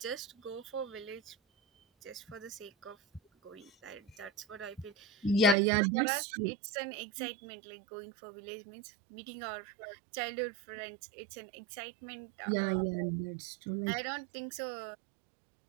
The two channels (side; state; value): left; drops out; at 5.6 s